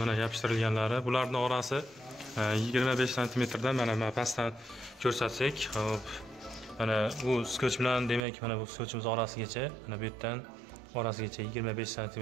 mana yopishtirilganlari. Bularning orasi 25 cm dan mana pastdan ko'rsatsak, hop. Mana bu skoch bilan demak mana bu skochimiz orasigacha, mana bu yerdan orasigacha 25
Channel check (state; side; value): drops out; left; at 8.2 s